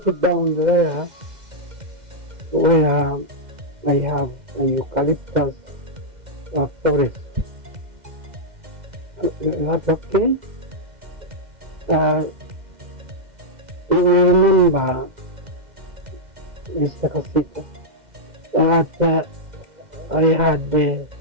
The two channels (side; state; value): left; late; 2.1 ms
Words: down there where I have a eucalyptus forest. Is that okay? You remember, Mr. Kasita, that I had, I